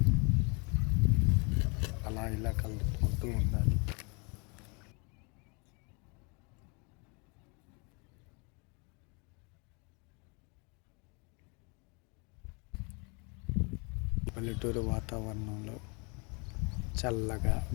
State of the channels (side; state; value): right; quieter; 32.4 dB